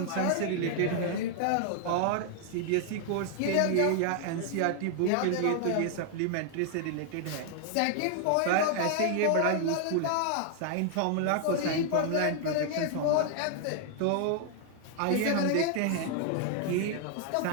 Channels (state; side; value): different; both; correlation 0.00